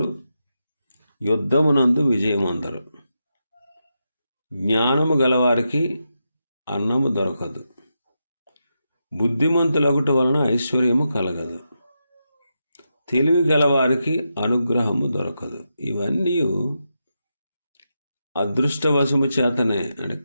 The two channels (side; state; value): both; inverted; correlation -0.86